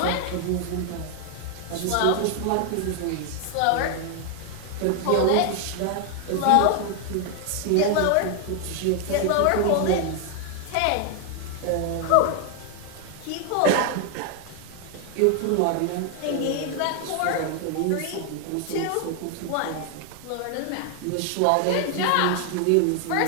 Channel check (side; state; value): both; different; correlation 0.00